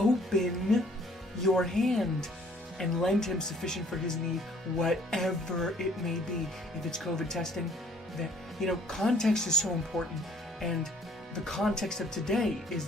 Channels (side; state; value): both; normal; correlation 0.58